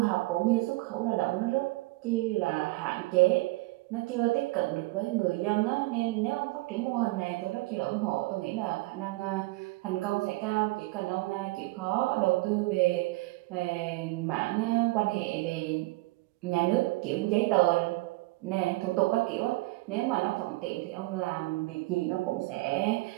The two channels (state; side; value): quieter; left; 21.8 dB